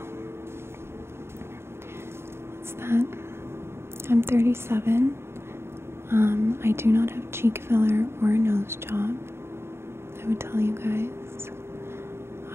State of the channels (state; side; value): late; left; 0.12 ms